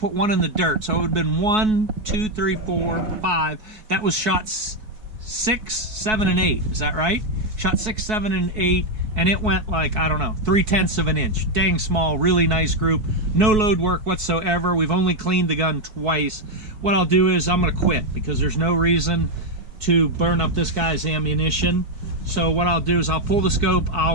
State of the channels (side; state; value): left; late; 4.7 ms